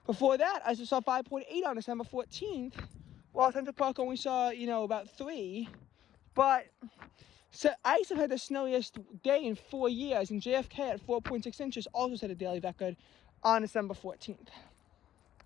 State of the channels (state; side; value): quieter; right; 11.9 dB